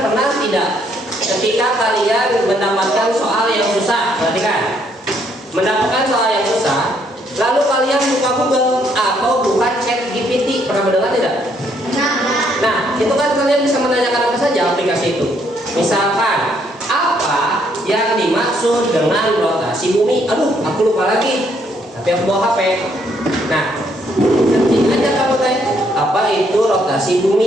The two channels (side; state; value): both; normal; correlation 0.70